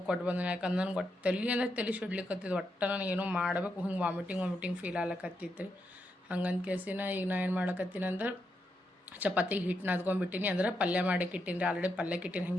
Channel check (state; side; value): normal; both; correlation 0.82